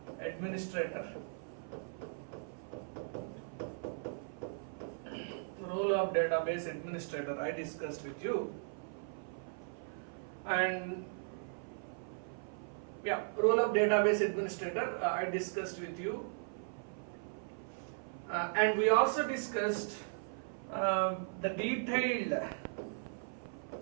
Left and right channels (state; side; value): silent; left; 53 dB below the other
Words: administrator. Role of database administrator I discussed with you, and role of database administrator I discussed with you, and we also discussed the detailed